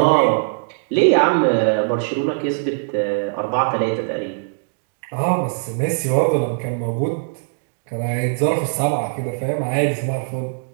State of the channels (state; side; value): silent; left; digital silence